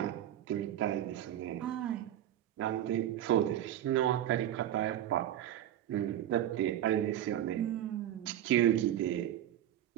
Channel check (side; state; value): left; quieter; 11.9 dB